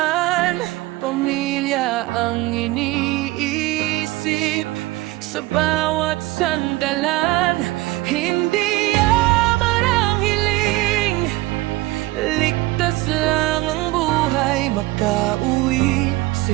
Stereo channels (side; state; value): left; quieter; 19.0 dB